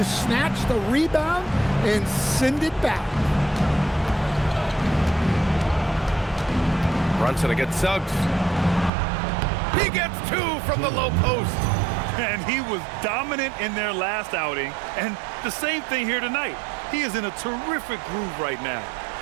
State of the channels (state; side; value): drops out; left; at 8.9 s